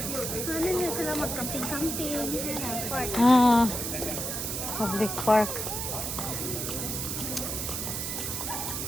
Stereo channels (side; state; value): right; noise; hiss, 3 dB below the sound